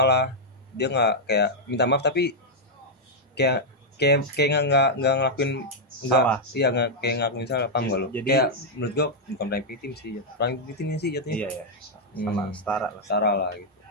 dia nggak kayak minta maaf, tapi kayak kayak nggak ngelakuin, nggak, Salah. iya nggak kayak ngelakuin salah, paham gak lo? Jadi- Kayak menurut gue bukan playing victim sih, playing victimnya sih jatuhnya. Iya ya. Sama setara lah. Setara lah gitu.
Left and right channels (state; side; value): normal; both; correlation -0.04